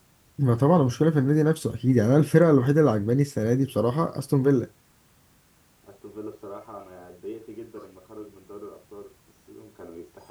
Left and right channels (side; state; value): both; identical; correlation 1.00